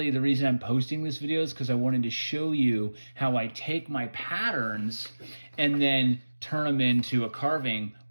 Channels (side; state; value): both; inverted; correlation -1.00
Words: the reason I'm posting this video is because I wanted to show you how I take my patterns and then turn them into a carving